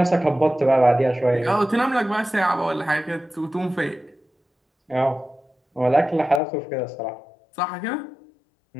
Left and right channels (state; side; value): drops out; right; at 6.4 s